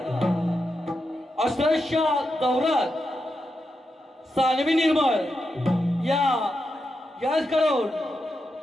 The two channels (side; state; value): both; normal; correlation 0.87